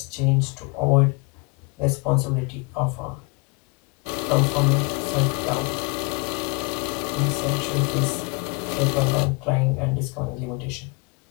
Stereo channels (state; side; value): quieter; right; 29.6 dB